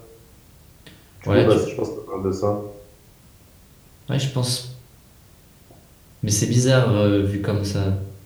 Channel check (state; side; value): identical; both; correlation 1.00